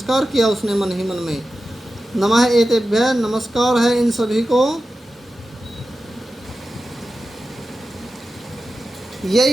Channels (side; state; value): both; normal; correlation 0.93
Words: किया उसने मन ही मन में। नमः एतेभ्यः, नमस्कार है इन सभी को।